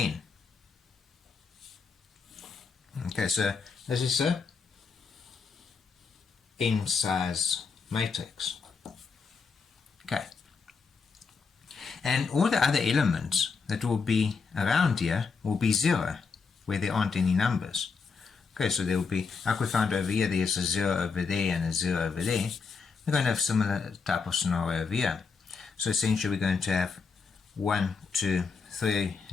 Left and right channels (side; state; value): right; quieter; 5.2 dB